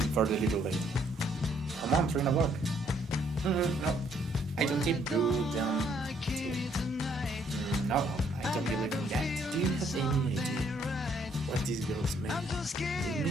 the little lady. Come on, 3 o'clock. No, I don't tip. You don't tip. No, I don't believe in that. Do you have any idea what these girls make? They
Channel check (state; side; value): normal; both; correlation 0.67